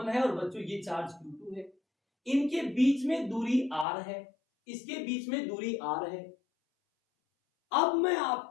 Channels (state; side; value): drops out; right; at 3.9 s